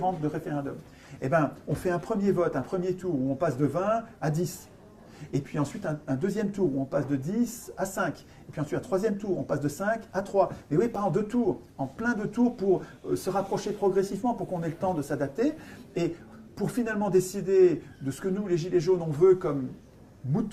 de référendum. Eh bien, on fait un premier vote, un premier tour où on passe de 20 à 10. Et puis ensuite, un deuxième tour où on passe de 10 à 5. Et puis ensuite, un troisième tour, on passe de 5 à 3. Mais oui, pas en 2 tours, en plein de tours pour se rapprocher progressivement, pour qu'on ait le temps de s'adapter. Et pour finalement décider de ce que nous, les Gilets jaunes, on veut comme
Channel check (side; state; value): both; identical; correlation 1.00